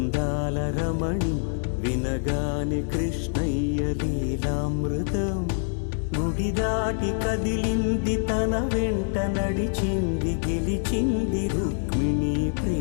రమణి వినగానే కృష్ణయ్య లీలామృతం గుడి దాటి కదిలింది తన వెంట నడిచింది గెలిచింది రుక్మిణి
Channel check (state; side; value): silent; right; 61 dB below the other